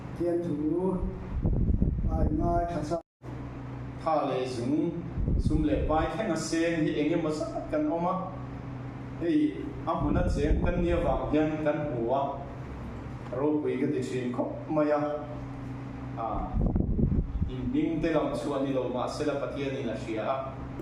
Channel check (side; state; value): both; identical; correlation 1.00